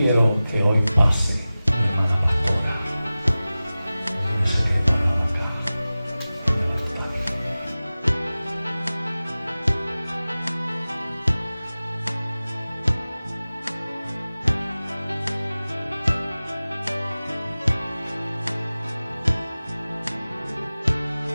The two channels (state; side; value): inverted; both; correlation -0.97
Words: que hoy pase